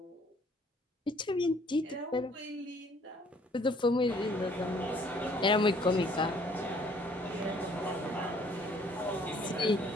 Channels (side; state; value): both; normal; correlation 0.60